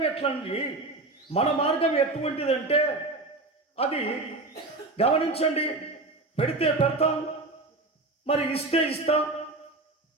ఎట్లండి? మన మార్గం ఎటువంటిదంటే అది గమనించండి, పెడితే పెడతాం, మరి ఇస్తే ఇస్తాం.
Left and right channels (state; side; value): quieter; left; 3.1 dB